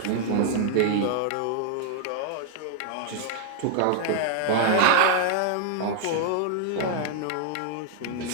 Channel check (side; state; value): both; different; correlation 0.00